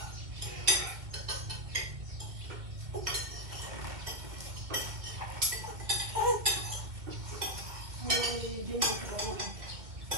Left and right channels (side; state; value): left; late; 2.2 ms